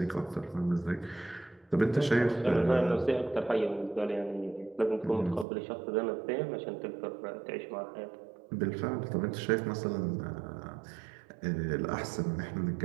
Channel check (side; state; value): left; drops out; at 5.5 s